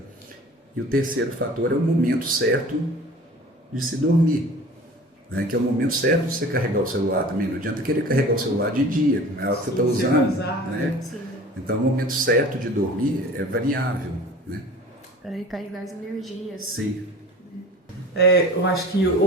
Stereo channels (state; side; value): normal; both; correlation 0.42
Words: E o terceiro fator é o momento certo de se dormir, né? Que é o momento certo de você carregar o celular também. Não adianta querer carregar o celular de dia, é algo que você está usando, né? Então o momento certo de dormir é variável, né? Para recarregar as energias. Sim. Eu acho que